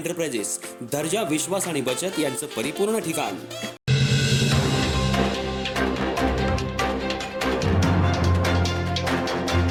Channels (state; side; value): identical; both; correlation 1.00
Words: दर्जा, विश्वास आणि बचत यांचं परिपूर्ण ठिकाण.